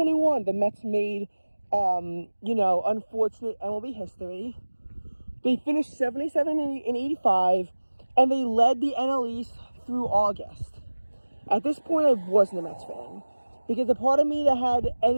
the Mets made, unfortunate MLB history. They finished 77-85, and they led the NL East through August. At this point, I wasn't a Mets fan, because the part of me that had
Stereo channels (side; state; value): both; inverted; correlation -1.00